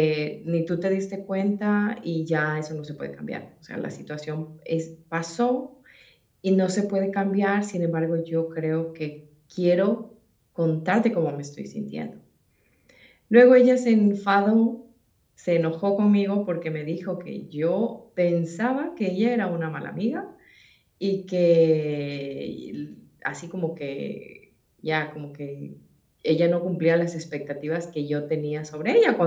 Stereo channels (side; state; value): both; identical; correlation 1.00